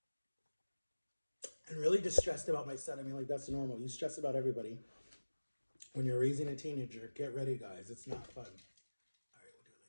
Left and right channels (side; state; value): both; inverted; correlation -1.00